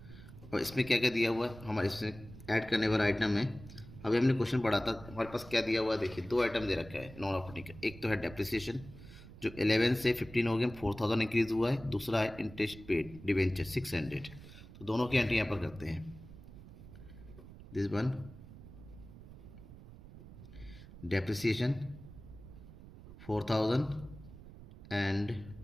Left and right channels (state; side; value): noise; right; rumble, 17 dB below the sound